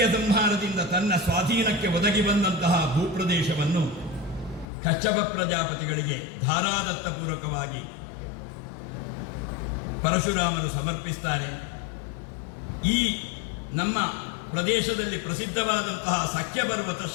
ಸಂಹಾರದಿಂದ ತನ್ನ ಸ್ವಾಧೀನಕ್ಕೆ ಒದಗಿ ಬಂದಂತಹ ಭೂಪ್ರದೇಶವನ್ನು ಕಶ್ಯಪ ಪ್ರಜಾಪತಿಗಳಿಗೆ ಧಾರಾದತ್ತಪೂರ್ವಕವಾಗಿ ಪರಶುರಾಮರು ಸಮರ್ಪಿಸ್ತಾರೆ. ಈ ನಮ್ಮ ಪ್ರದೇಶದಲ್ಲಿ ಪ್ರಸಿದ್ಧವಾದಂತಹ ಸಖ್ಯ ಪರ್ವತ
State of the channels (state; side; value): drops out; right; at 4.7 s